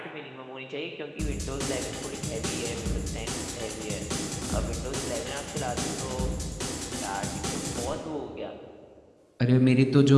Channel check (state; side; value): identical; both; correlation 1.00